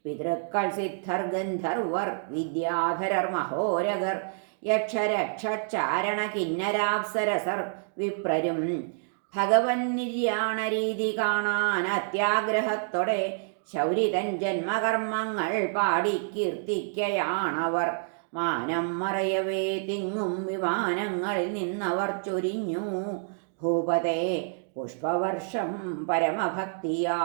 പിതൃക്കൾ സിദ്ധർ ഗന്ധർവർ വിദ്യാധരർ മഹോരഗർ യക്ഷരക്ഷാരണ കിന്നരാപ്സരസർ വിപ്രരും ഭഗവൻ നിര്യാണ രീതി കാണാൻ അത്യാഗ്രഹത്തോടെ ശൗരിതൻ ജന്മകർമ്മങ്ങൾ പാടി കീർത്തിക്കയാണവർ. മാനം മറയവേ തിങ്ങും വിമാനങ്ങളിൽ നിന്നവർ ചൊരിഞ്ഞു ഭൂപതേ പുഷ്പവർഷം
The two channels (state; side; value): silent; left; digital silence